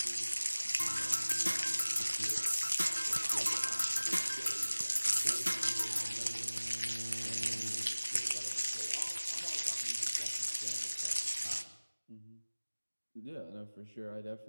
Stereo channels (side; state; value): both; inverted; correlation -1.00